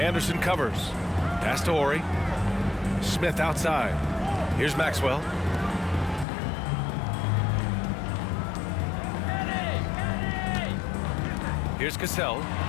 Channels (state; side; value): drops out; right; at 6.2 s